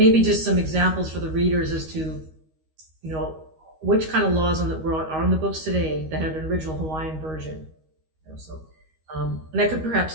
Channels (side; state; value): left; late; 13 ms